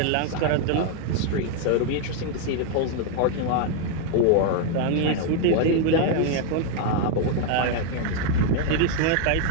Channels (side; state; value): both; different; correlation 0.00